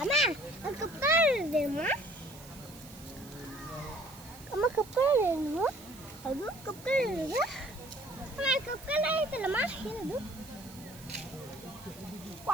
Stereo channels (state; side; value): noise; right; hiss, 19 dB below the sound